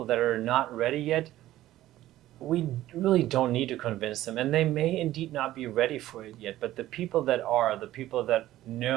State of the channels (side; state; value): left; quieter; 14.7 dB